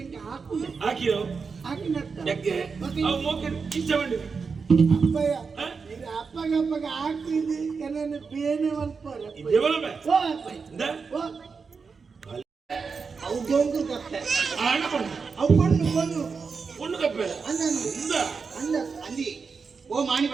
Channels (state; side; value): quieter; left; 5.2 dB